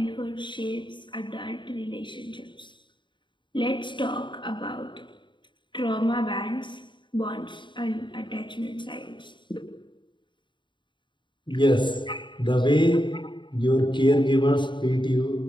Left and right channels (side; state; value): right; late; 0.23 ms